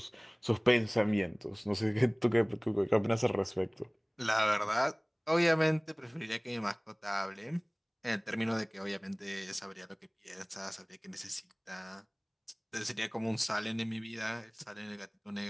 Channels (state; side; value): identical; both; correlation 1.00